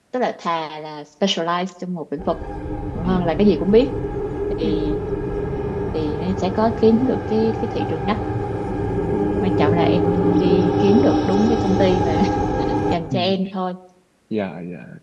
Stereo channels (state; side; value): identical; both; correlation 1.00